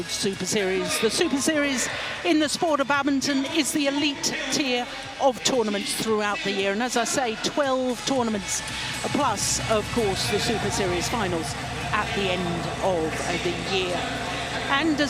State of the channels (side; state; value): both; identical; correlation 1.00